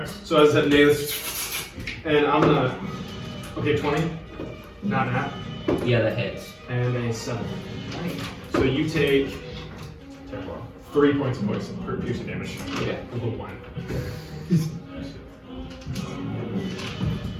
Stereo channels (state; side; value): identical; both; correlation 1.00